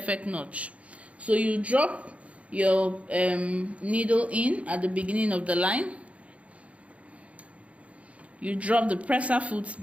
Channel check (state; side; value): late; left; 0.064 ms